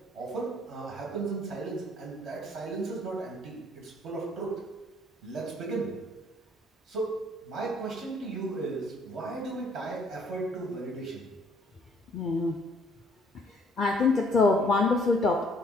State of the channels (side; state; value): both; normal; correlation 0.61